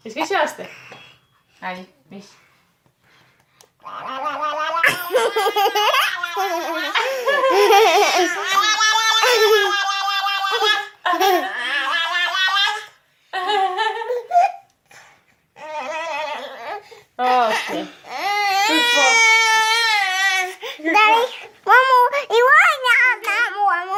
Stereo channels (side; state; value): both; identical; correlation 1.00